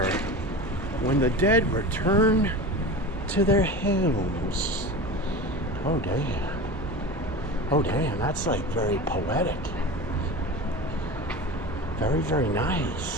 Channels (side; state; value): both; normal; correlation 0.31